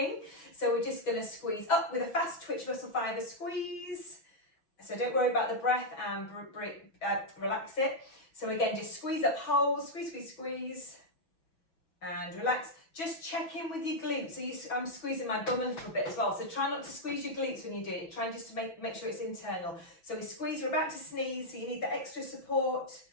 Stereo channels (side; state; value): right; late; 6.1 ms